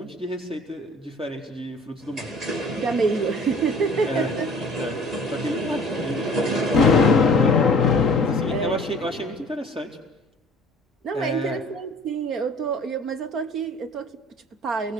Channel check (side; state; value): both; normal; correlation 0.49